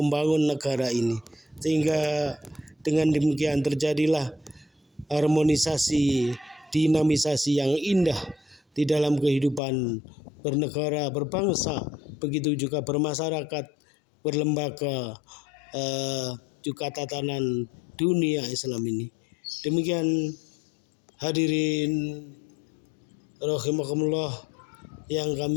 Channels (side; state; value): right; drops out; at 9.6 s